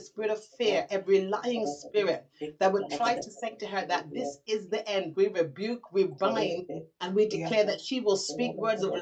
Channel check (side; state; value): both; identical; correlation 1.00